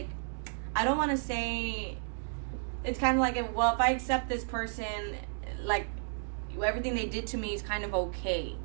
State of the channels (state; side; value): silent; left; digital silence